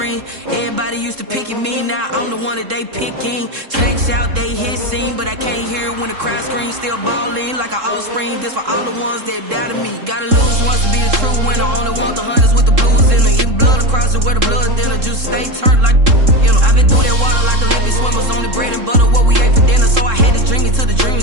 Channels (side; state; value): left; late; 3.7 ms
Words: Everybody used to pick at me, now I'm the one that they picking. Snakes out, they hit scene, but I can't hear it when the crowd screams. Still ballin' like an offspring. This for all the ones that doubted me. Gotta lose once to be a true winner. Only want the hunters with the blues in it. Eating blood across it where the blood dinner. Juice stay turned like, you know. I've been through that water like Olympic swimmers. Only bread and butter, what we ate for dinner. So I had to dream it till the dream